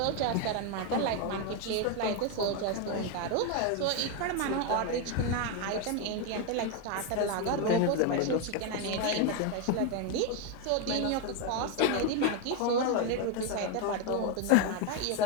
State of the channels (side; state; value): both; different; correlation 0.02